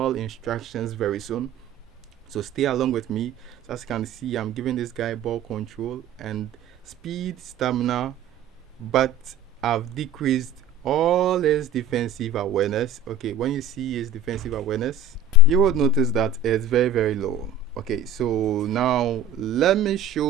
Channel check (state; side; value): quieter; left; 3.1 dB